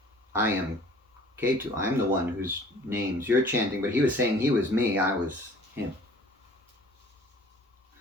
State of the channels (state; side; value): normal; both; correlation 0.50